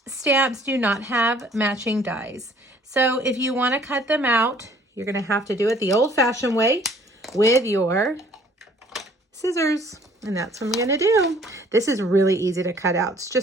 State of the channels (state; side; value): normal; both; correlation 0.57